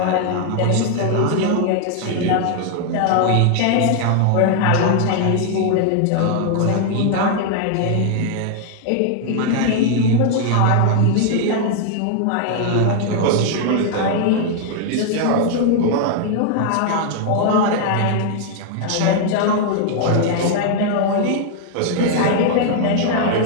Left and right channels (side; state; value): both; different; correlation 0.00